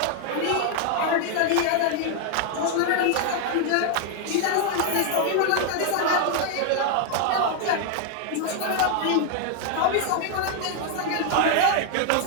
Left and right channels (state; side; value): different; both; correlation 0.00